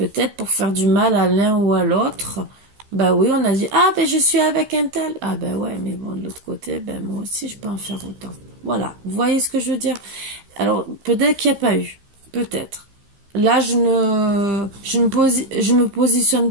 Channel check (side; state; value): left; late; 15 ms